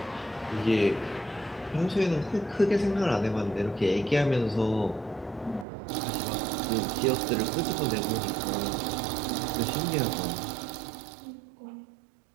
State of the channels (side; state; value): left; drops out; at 5.7 s